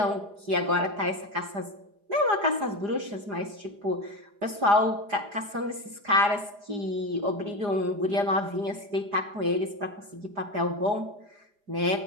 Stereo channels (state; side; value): late; left; 4.9 ms